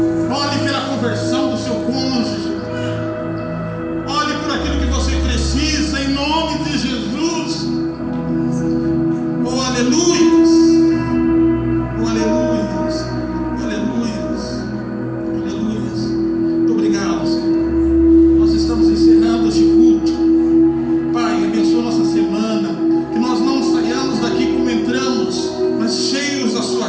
Ore pela conversão do seu cônjuge. Ore por aquilo que você precisa, em nome de Jesus. Aleluias. Aleluias. Aleluias. Aleluias. Muito obrigado, Senhor. Nós estamos encerrando este culto. Pai, abençoa nossa semana. Que nós não saiamos daqui como entramos, mas cheios da sua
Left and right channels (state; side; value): identical; both; correlation 1.00